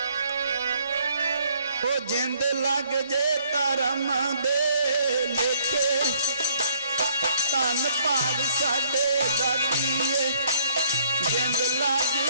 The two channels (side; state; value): both; inverted; correlation -0.64